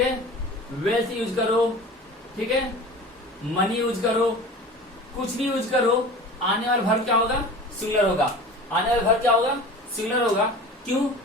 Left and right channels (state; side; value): normal; both; correlation 0.37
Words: वेल्थ यूज करो, ठीक है, मनी यूज करो, कुछ भी यूज करो, आने वाला वर्ब क्या होगा? सिंगुलर होगा। आने वाला वर्ब क्या होगा? सिंगुलर होगा। क्यों?